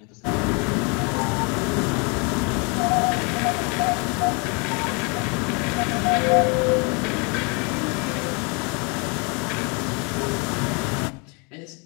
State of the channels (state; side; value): quieter; right; 32.6 dB